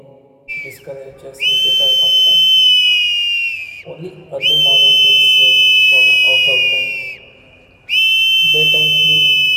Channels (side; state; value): both; identical; correlation 1.00